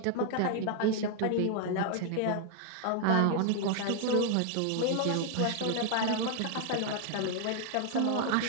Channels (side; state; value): both; different; correlation 0.00